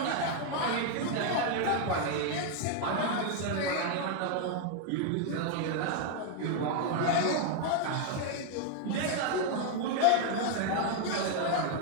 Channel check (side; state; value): both; different; correlation 0.00